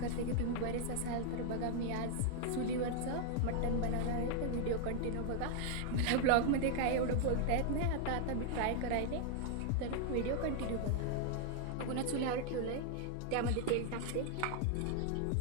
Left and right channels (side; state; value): both; different; correlation 0.00